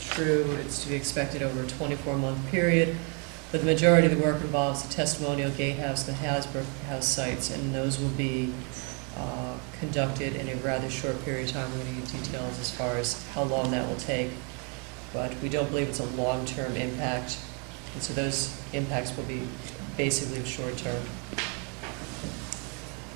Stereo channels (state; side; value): quieter; left; 36.2 dB